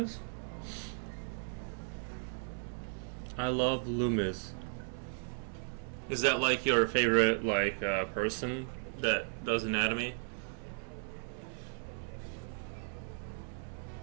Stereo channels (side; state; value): left; silent; 54 dB below the other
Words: I love Loomis. Is that like your favorite person that does anatomy?